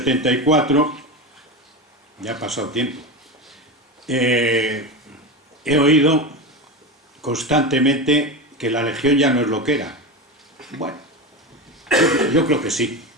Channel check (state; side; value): normal; both; correlation 0.21